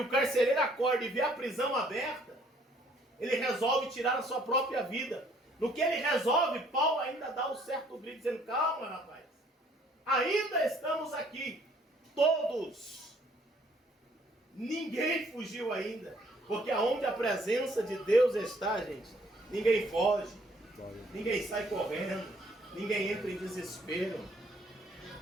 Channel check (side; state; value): both; normal; correlation 0.62